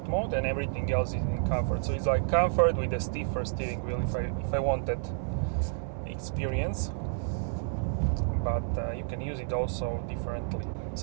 mode and everything else is in Comfort. So it's like Comfort with a stiffer steering wheel if I want that experience. But you can use it also differently.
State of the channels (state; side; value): silent; left; digital silence